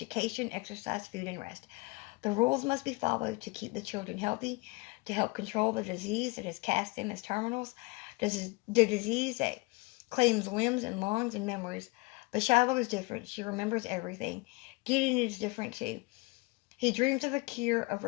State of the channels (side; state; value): right; quieter; 25.5 dB